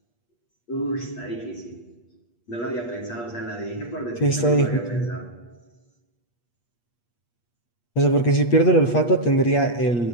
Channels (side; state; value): right; late; 8.4 ms